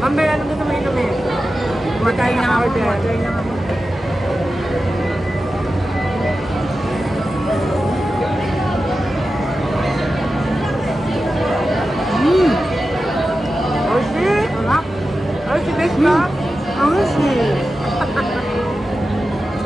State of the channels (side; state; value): both; normal; correlation 0.92